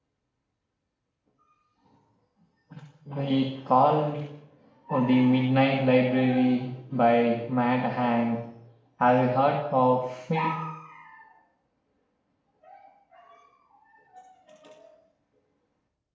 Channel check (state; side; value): identical; both; correlation 1.00